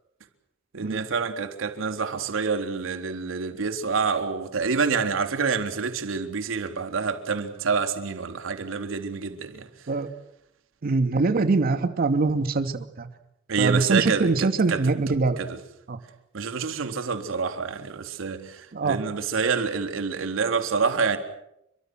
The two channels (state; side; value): quieter; left; 4.2 dB